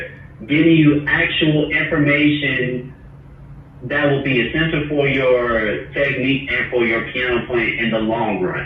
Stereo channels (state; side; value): identical; both; correlation 1.00